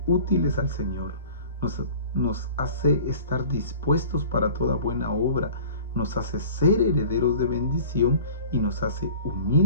útiles al Señor, nos hace estar dispuestos para toda buena obra, nos hace ser herederos de bendición y nos hace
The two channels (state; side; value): inverted; both; correlation -0.43